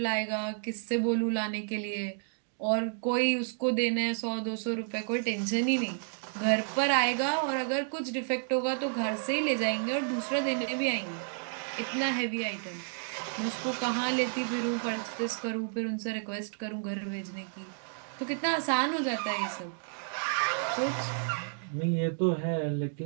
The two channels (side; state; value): left; silent; digital silence